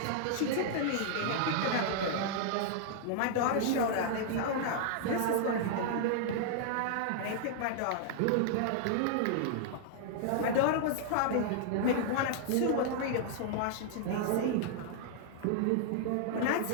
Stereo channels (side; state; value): both; different; correlation -0.01